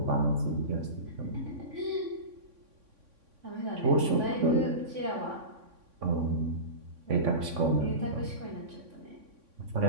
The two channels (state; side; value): late; left; 3.5 ms